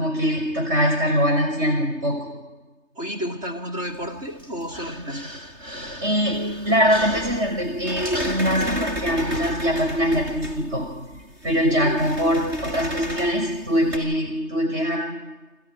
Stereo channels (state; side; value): late; left; 3.3 ms